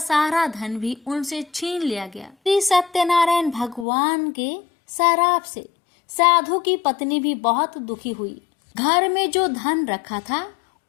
धन भी उनसे छीन लिया गया। श्री सत्यनारायण भगवान के शराप से साधु की पत्नी भी बहुत दुखी हुई। घर में जो धन रखा था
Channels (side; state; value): right; drops out; at 3.9 s